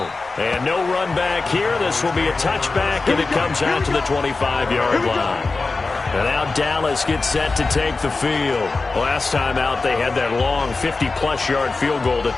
And no run back here. This will be a touchback, and it comes out to the 25-yard line. And now Dallas gets set to take the field. Last time out, they had that long 50-plus yard field goal that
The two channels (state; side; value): quieter; right; 3.8 dB